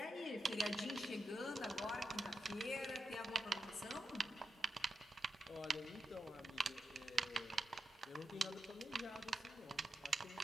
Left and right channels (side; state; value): both; normal; correlation 0.87